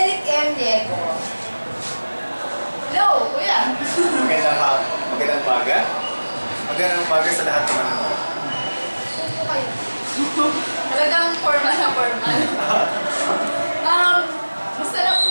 M. Riego. Hello, kuya! Magandang umaga sa lahat ng mga Talagang formal na formal.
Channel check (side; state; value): both; inverted; correlation -1.00